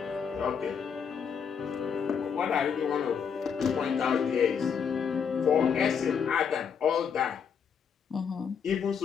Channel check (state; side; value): quieter; right; 6.9 dB